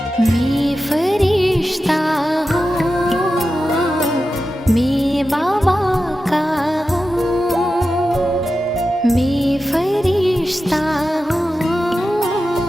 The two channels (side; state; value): both; normal; correlation 0.92